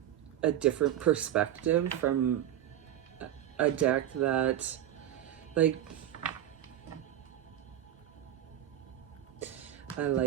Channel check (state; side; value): quieter; left; 11.8 dB